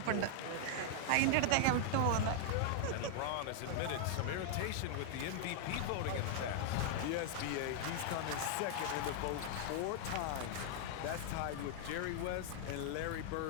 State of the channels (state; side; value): different; both; correlation 0.00